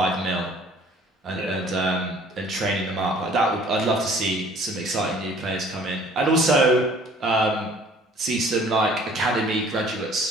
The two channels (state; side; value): normal; both; correlation 0.54